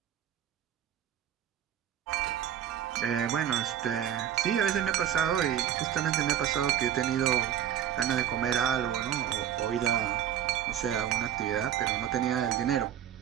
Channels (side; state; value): left; quieter; 10.4 dB